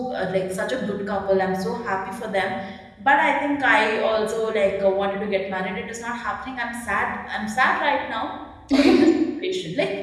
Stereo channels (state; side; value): identical; both; correlation 1.00